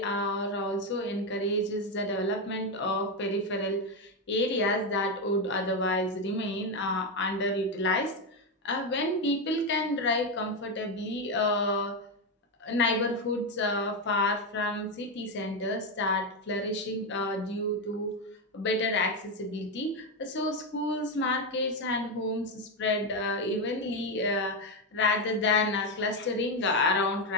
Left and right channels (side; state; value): both; normal; correlation 0.08